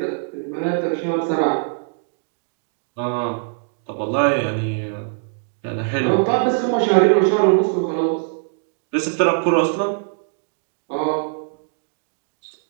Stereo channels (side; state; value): left; silent; digital silence